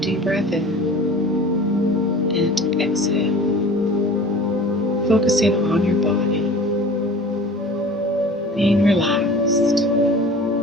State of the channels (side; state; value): both; normal; correlation 0.42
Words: breath in and exhale, focusing on your body, being relaxed.